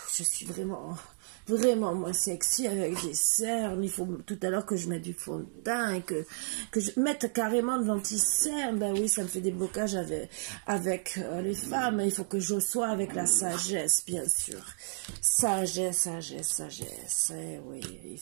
Je suis vraiment moins sexy avec des cernes. Il faut tout à l'heure que je mette du fond de teint et que je mette carrément de l'anti-cerne. Ben oui, ça me fait des blocages avec les femmes. Il faut que je sois avec la sagesse, bien sûr. Sagesse. Eh oui, il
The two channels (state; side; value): silent; left; digital silence